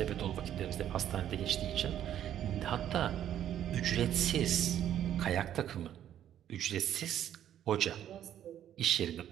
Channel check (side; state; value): left; quieter; 10.8 dB